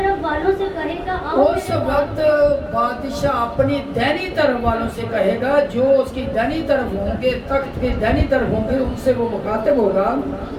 والوں سے کہے گا آؤ اس وقت بادشاہ اپنی دینی طرف والوں سے کہے گا، جو اس کی دینی طرف ہوں گے، تخت کی دینی طرف ہوں گے، ان سے وہ مخاطب ہوگا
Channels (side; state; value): both; identical; correlation 1.00